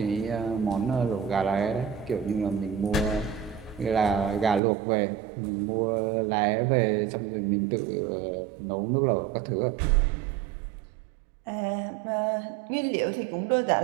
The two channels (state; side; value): drops out; left; at 4.6 s